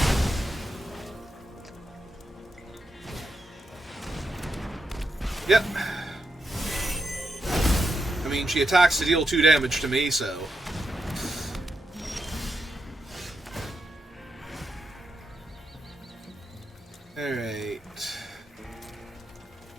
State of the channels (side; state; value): both; normal; correlation 0.84